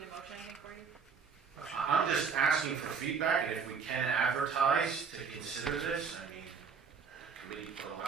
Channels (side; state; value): left; quieter; 5.9 dB